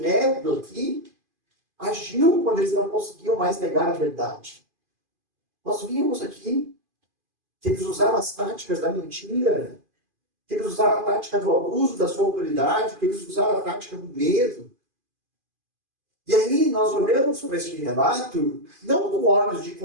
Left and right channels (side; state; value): left; late; 2.5 ms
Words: aqui agiu quando eles não conseguiam mais negar a verdade. Nós vimos aqui que eles usaram as táticas da mentira, que eles usaram a tática do abuso da sua autoridade, que eles usaram a tática do medo. E aí nós olhamos para este relato, não com olhos de